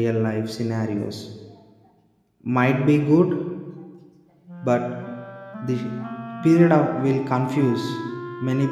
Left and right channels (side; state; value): both; identical; correlation 1.00